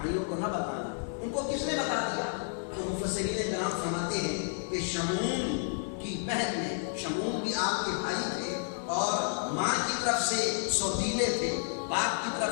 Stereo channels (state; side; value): silent; right; digital silence